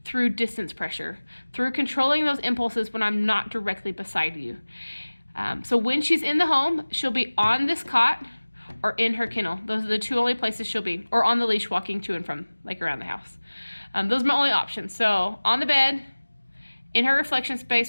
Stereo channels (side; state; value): both; inverted; correlation -1.00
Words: through distance pressure, through controlling those impulses when I'm not directly beside you. So when she's in the home, she'll be on this cot or in her kennel. Those are the two only places she'll be, or on the leash walking to and from, like around the house. Those are my only options. So on the bed, in her reflection